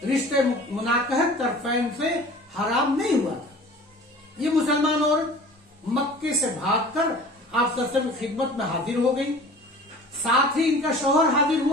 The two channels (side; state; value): both; normal; correlation 0.43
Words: رشتے مناکحت طرفین سے حرام نہیں ہوا تھا. یہ مسلمان عورت مکے سے بھاگ کر آپ صلی اللہ علیہ وسلم کی خدمت میں حاضر ہو گئی، ساتھ ہی ان کا شوہر حاضر